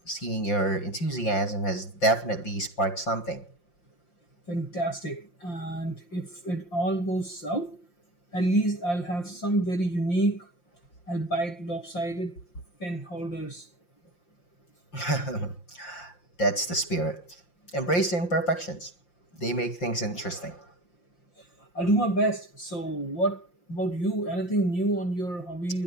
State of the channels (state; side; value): late; right; 5.7 ms